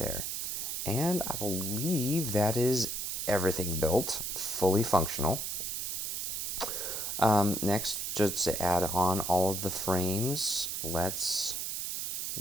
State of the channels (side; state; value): right; noise; hiss, 2 dB below the sound